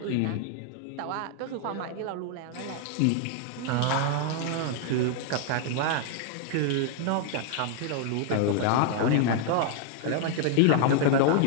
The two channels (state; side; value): different; both; correlation 0.00